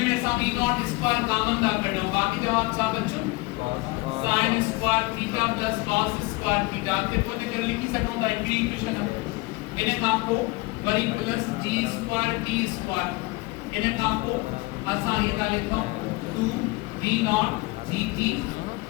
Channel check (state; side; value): quieter; right; 22.9 dB